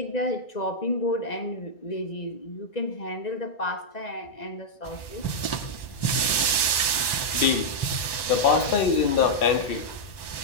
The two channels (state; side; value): late; right; 1.1 ms